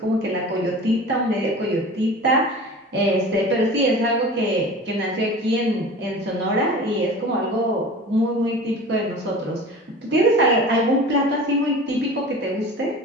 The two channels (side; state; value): both; normal; correlation 0.38